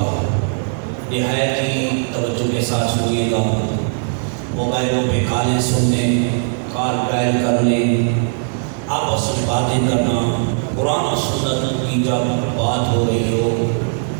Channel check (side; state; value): left; silent; digital silence